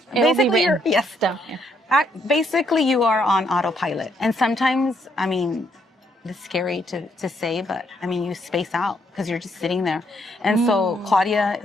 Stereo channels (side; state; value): both; normal; correlation 0.72